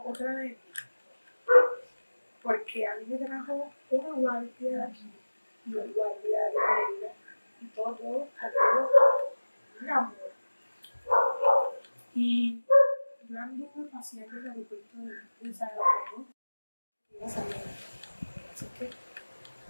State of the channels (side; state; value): both; inverted; correlation -1.00